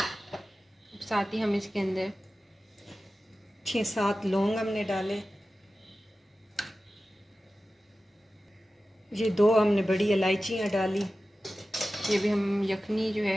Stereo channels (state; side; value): normal; both; correlation 0.95